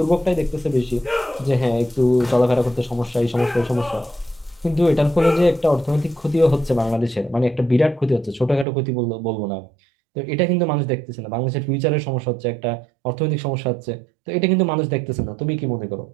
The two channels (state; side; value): drops out; left; at 8.7 s